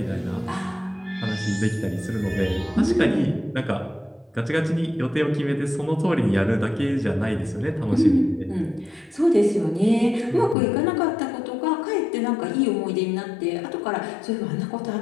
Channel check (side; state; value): right; drops out; at 10.6 s